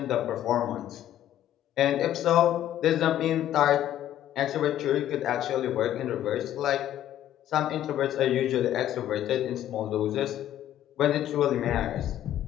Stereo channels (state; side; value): quieter; right; 11.9 dB